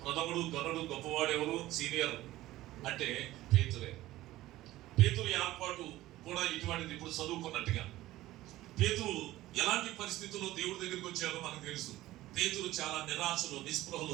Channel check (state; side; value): quieter; left; 16.2 dB